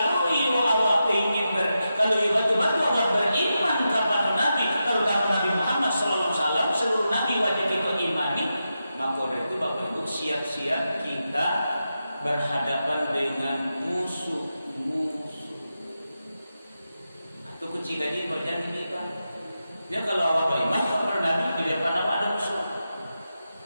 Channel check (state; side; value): inverted; both; correlation -0.89